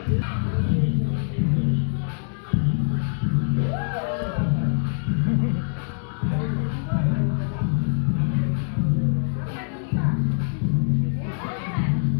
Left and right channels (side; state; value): right; silent; digital silence